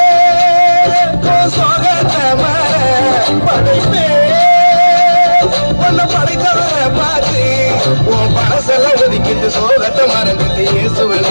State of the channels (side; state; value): both; inverted; correlation -1.00